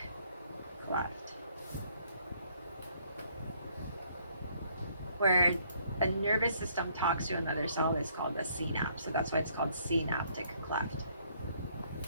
cleft, where a nervous system talks to another cell is called a synapse. So that's why it's called synaptic cleft.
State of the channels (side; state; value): both; inverted; correlation -0.65